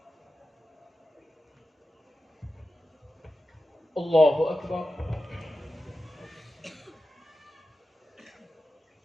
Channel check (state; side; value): normal; both; correlation 0.93